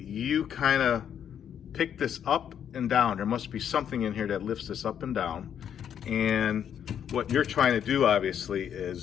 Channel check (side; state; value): right; quieter; 8.9 dB